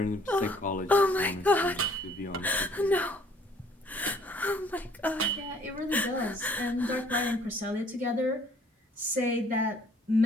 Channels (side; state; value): both; normal; correlation 0.59